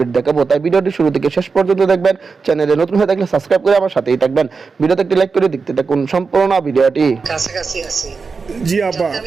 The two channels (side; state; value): left; quieter; 4.8 dB